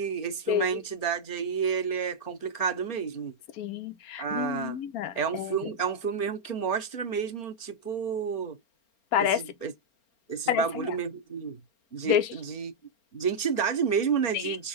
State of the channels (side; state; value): right; late; 4.4 ms